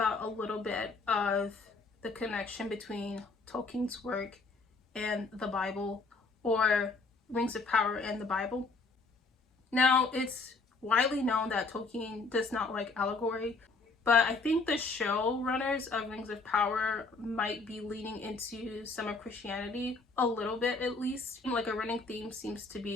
a little bit of the connection between Tolkien's work and the Bible, or Rings of Power and the Bible. Now, it's widely known that Tolkien does not like allegory, but I think the showrunners of Rings of Power might be leaning into some of Christianity a little bit, at least. Like, a running theme seems to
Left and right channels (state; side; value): quieter; right; 3.9 dB